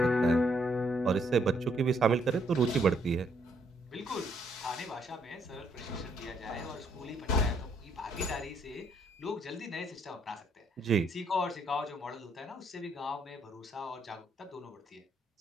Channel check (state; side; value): normal; both; correlation 0.70